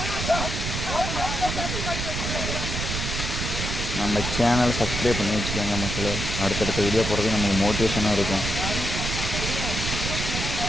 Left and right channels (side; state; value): right; noise; rumble, 3 dB below the sound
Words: நம்ம சேனல் சப்ஸ்கிரைப் பண்ணி வச்சுக்கோங்க மக்களே. அடுத்தடுத்த வீடியோ போடுறது நமக்கு மோட்டிவேஷனாக இருக்கும்.